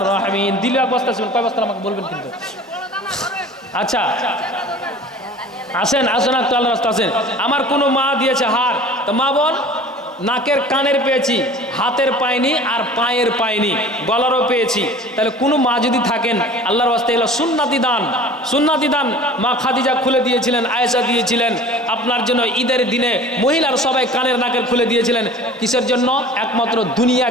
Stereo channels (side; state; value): both; normal; correlation 0.43